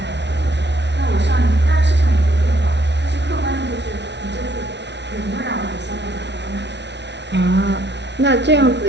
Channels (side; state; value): left; late; 0.51 ms